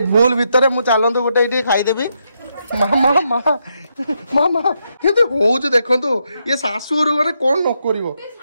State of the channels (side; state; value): both; inverted; correlation -0.81